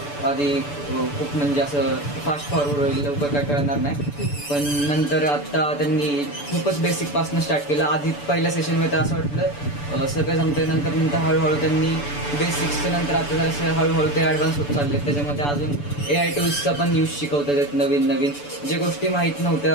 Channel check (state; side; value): late; right; 6.9 ms